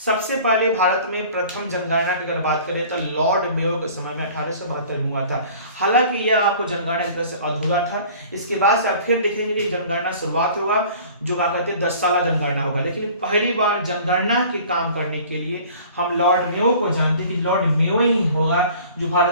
पहले भारत में प्रथम जनगणना की अगर बात करें तो लॉर्ड मेयो के समय में 1872 में हुआ था। हालांकि यह आपको जनगणना की तरह से अधूरा था। इसके बाद से आप फिर देखेंगे कि जनगणना शुरुआत होगा जो क्या कहते हैं 10 साला जनगणना होगा। लेकिन पहली बार जनगणना के काम करने के लिए हम लॉर्ड मेयो को जानते हैं कि लॉर्ड मेयो ही होगा जो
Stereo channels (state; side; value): inverted; both; correlation -0.47